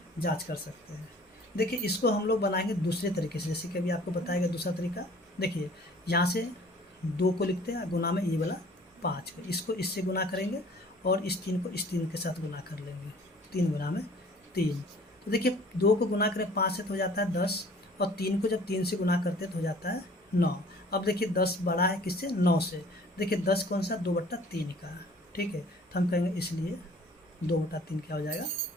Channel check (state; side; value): normal; both; correlation 0.51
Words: जांच कर सकते हैं। देखिए इसको हम लोग बनाएंगे दूसरे तरीके से, जैसे कि अभी आपको बताएगा दूसरा तरीका। देखिए यहाँ से 2 को लिखते हैं गुना में ये वाला 5 को, इसको इससे गुना करेंगे और इस 3 को इस 3 के साथ गुना कर लेंगे, 3 गुना में 3। तो देखिए 2 को गुना करें 5 से तो हो जाता है 10, और 3 को जब 3 से गुना करते तो हो जाता है 9। अब देखिए 10 बड़ा है किससे, 9 से। देखिए 10 कौन सा, 2/3 का, ठीक है, तो हम कहेंगे इसलिए 2/3 क्या हो जाएगा,